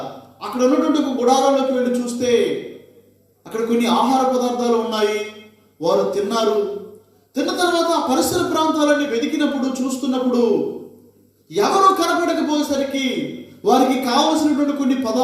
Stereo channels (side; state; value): both; identical; correlation 1.00